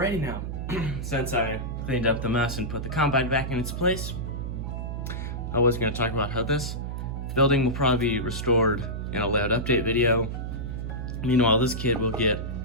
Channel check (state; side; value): noise; right; hum, 5 dB below the sound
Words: now, since I cleaned up the mess and put the combine back in its place, I was going to talk about how this building will probably be restored in a layout update video. Meanwhile, this kid will get